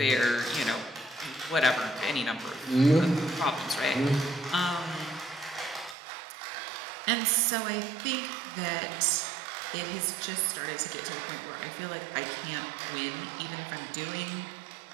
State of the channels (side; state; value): left; drops out; at 6.0 s